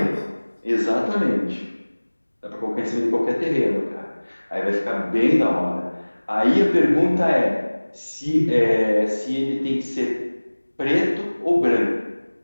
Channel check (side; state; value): both; inverted; correlation -1.00